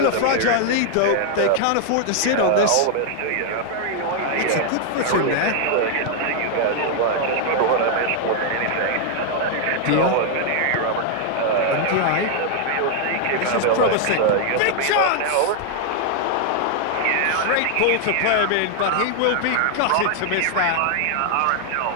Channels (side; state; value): both; different; correlation 0.00